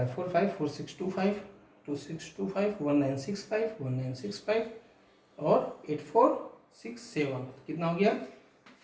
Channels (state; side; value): identical; both; correlation 1.00